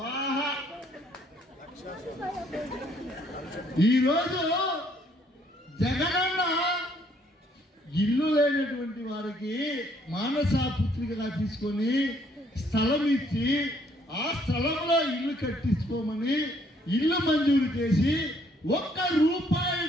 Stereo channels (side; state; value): both; normal; correlation 0.66